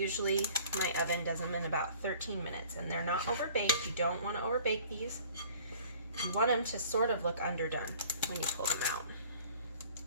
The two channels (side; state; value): both; inverted; correlation -0.51